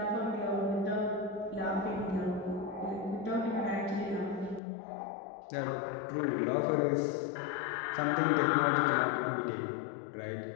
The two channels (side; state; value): right; drops out; at 4.6 s